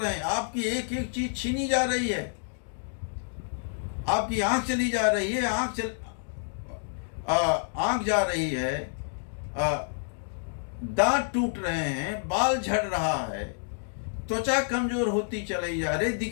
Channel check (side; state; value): right; silent; digital silence